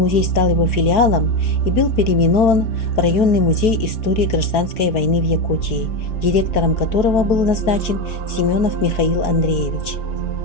стал его филиалом и был переименован в районный музей истории гражданской войны в Якутии, директором которого был назначен Семенов Михаил Андреевич.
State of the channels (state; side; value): late; right; 4.6 ms